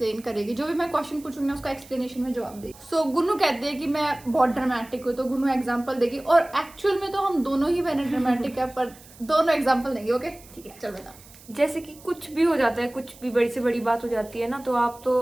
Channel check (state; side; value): noise; right; hiss, 22 dB below the sound